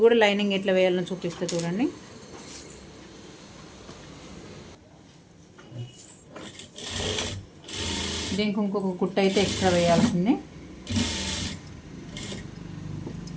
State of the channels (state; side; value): identical; both; correlation 1.00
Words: కూడా లైనింగ్ ఎట్లా వేయాలని చూపిస్తే చూడండి. దీనికి ఇంకొక కుట్ట అయితే ఎక్స్ట్రా వేయాల్సిందే.